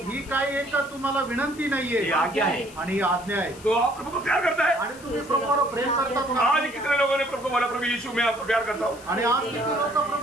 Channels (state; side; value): noise; left; hiss, 20 dB below the sound